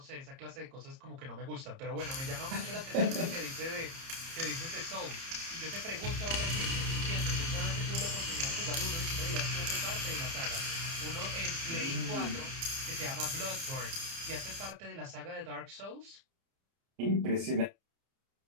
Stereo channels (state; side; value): late; left; 30 ms